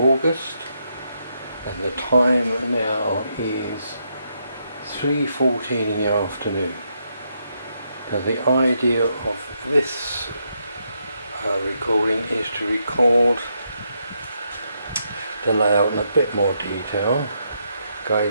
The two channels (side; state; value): both; inverted; correlation -0.79